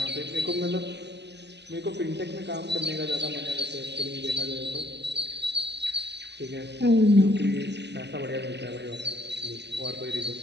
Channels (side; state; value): left; late; 0.50 ms